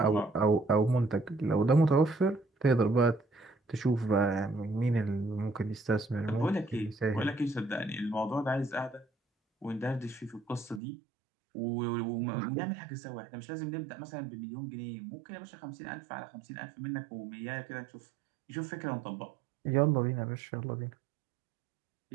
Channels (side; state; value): left; drops out; at 10.8 s